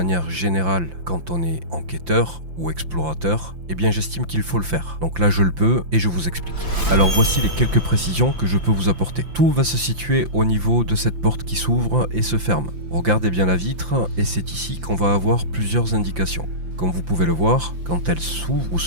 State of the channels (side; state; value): left; late; 5.8 ms